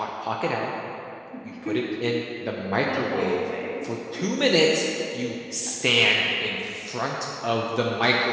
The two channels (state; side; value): identical; both; correlation 1.00